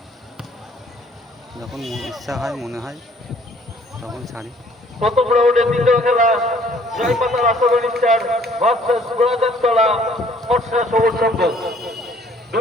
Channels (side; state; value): both; normal; correlation 0.59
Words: যখন ইচ্ছা হয়, মনে হয় তখন ছাড়ি। প্রথম রাউন্ডের দ্বিতীয় খেলা জয়পাতা রাষ্ট্রবাণী স্টার ভার্সেস গোলাজারতলা ফর্সা সবুজ সংঘ।